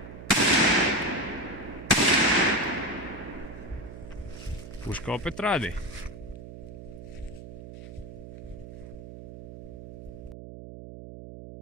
Puška opet radi.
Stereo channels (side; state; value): right; noise; hum, 13 dB below the sound